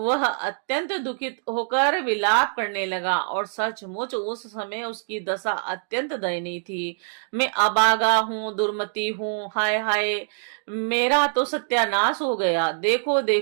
अत्यंत दुखित होकर विलाप करने लगा और सचमुच उस समय उसकी दशा अत्यंत दयनीय थी। मैं अभागा हूँ, दुर्मति हूँ, हाय हाय, मेरा तो सत्यानाश हो गया। देखो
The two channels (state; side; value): silent; left; digital silence